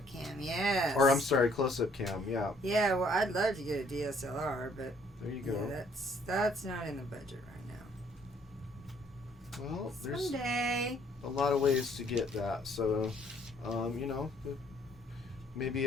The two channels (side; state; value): both; normal; correlation 0.63